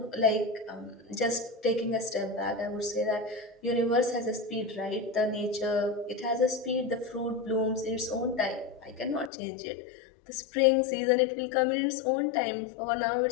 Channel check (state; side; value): drops out; right; at 9.3 s